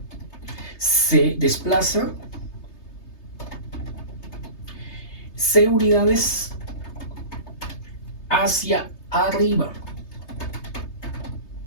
se desplaza c unidades hacia arriba.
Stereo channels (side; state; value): right; late; 3.3 ms